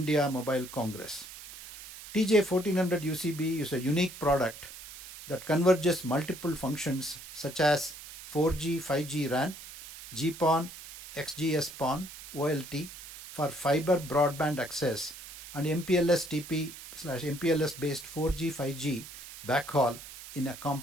Mobile Congress. TJ 1400 UCB is a unique product that converges multiple functions such as 4G, 5G RAN, GPON, XGS-PON, OLT for fiber broadband access, and MPLS TP/MPLS based 4G, 5G backhaul in a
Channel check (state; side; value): noise; right; hiss, 14 dB below the sound